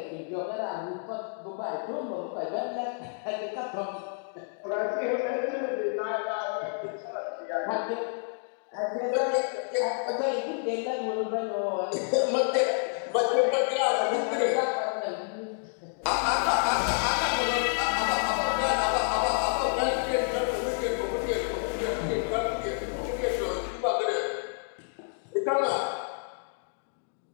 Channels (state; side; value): silent; right; 58 dB below the other